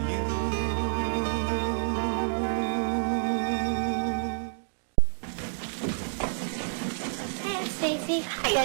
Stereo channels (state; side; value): silent; left; digital silence